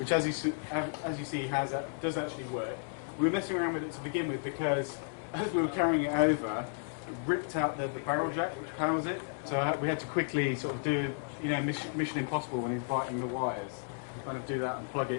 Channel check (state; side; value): silent; right; digital silence